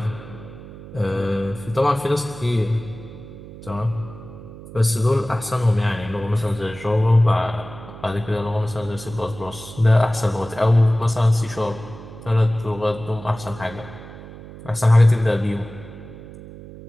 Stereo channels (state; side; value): noise; right; hum, 15 dB below the sound